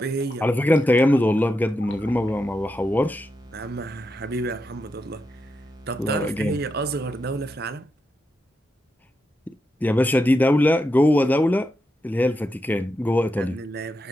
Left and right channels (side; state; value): both; normal; correlation 0.86